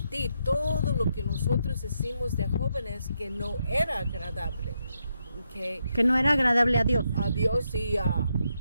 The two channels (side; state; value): both; inverted; correlation -0.81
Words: todo lo que nosotros hicimos de jóvenes que no era agradable, Que no era agradable a Dios. a Dios y a